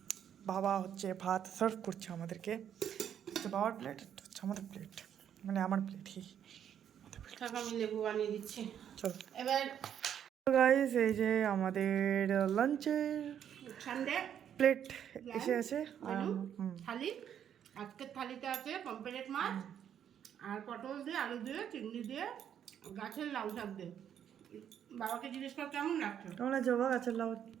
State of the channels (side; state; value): left; quieter; 9.3 dB